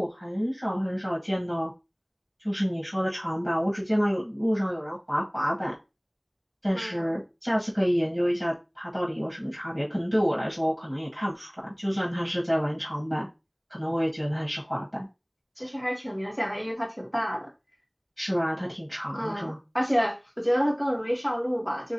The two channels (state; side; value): identical; both; correlation 1.00